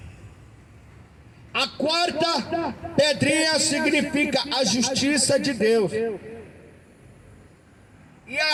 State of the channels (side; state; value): both; identical; correlation 1.00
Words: A quarta pedrinha significa a justiça de Deus. E